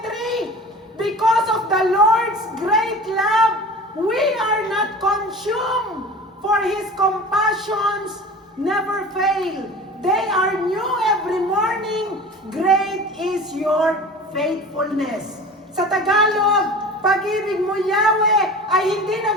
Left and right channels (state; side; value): normal; both; correlation 0.38